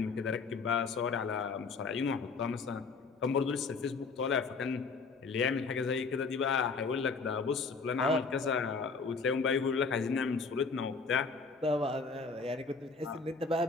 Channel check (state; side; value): quieter; right; 4.6 dB